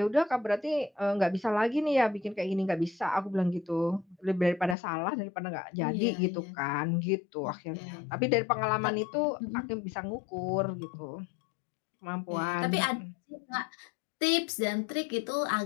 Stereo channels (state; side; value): drops out; right; at 4.8 s